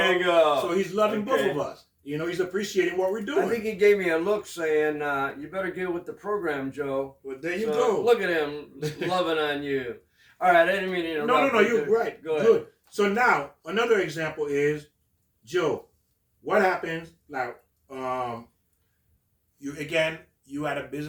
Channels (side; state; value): both; identical; correlation 1.00